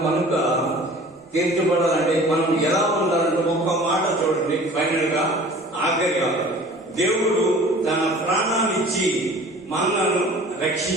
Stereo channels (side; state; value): both; normal; correlation 0.46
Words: కనుక తీర్చబడాలంటే మనం ఎలా ఉండాలంటే ఒక్క మాట చూడండి. ఫైనల్ గా ఆఖరిగా దేవుడు తన ప్రాణాన్నిచ్చి మనలను